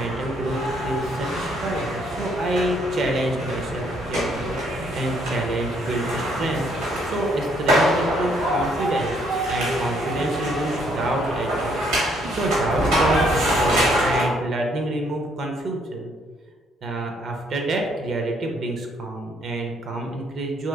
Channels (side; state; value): both; normal; correlation 0.68